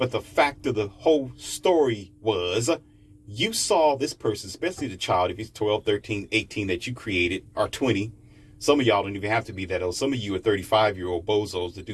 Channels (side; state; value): both; identical; correlation 1.00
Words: the fact of the whole story was you saw this person, especially the child, if he's 12, 13, 18 that you created, or 20. Some of y'all don't even have to be that old. Some of you are 35-year-old bozos that